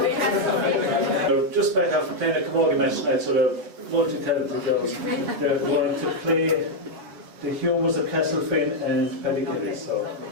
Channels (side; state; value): left; late; 8.2 ms